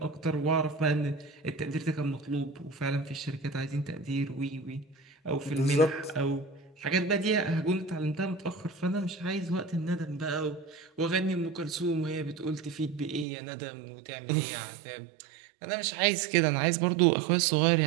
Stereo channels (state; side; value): drops out; left; at 13.2 s